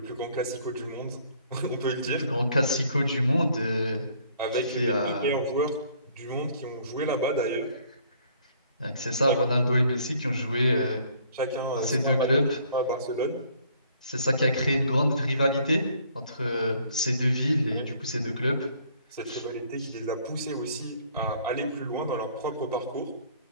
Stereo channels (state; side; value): inverted; both; correlation -0.60